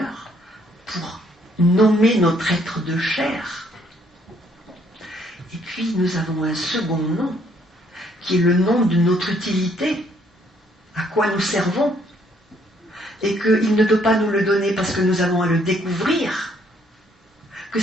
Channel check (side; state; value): both; normal; correlation 0.67